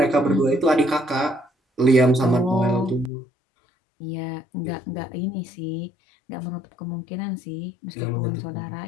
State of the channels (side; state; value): right; drops out; at 3.1 s